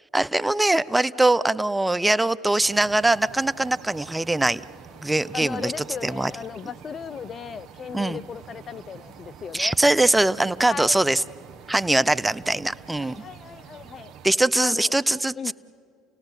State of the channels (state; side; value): normal; both; correlation 0.97